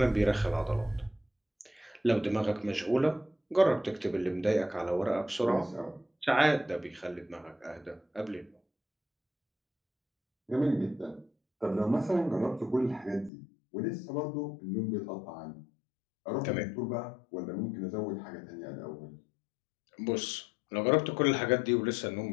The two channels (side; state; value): right; drops out; at 13.3 s